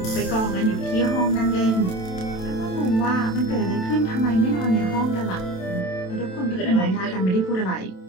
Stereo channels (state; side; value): late; right; 27 ms